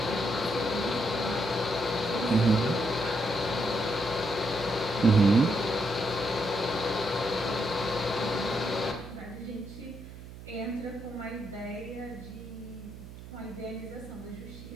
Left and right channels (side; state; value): right; noise; hum, 14 dB below the sound